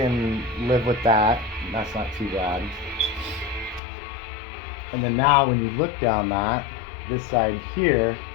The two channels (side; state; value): right; drops out; at 3.8 s